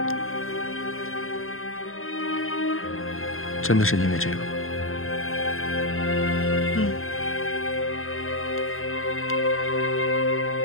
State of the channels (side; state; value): right; late; 0.61 ms